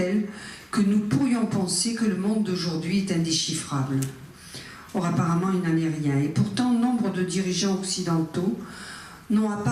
que nous pourrions penser que le monde d'aujourd'hui est indéchiffrable. Or, apparemment, il n'en est rien. Et pourtant, nombre de dirigeants occidentaux n'ont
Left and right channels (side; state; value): both; identical; correlation 1.00